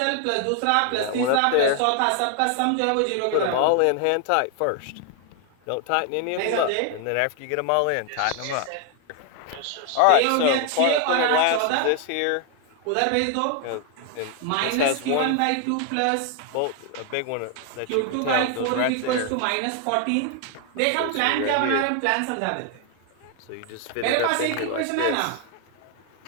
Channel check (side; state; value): both; different; correlation 0.00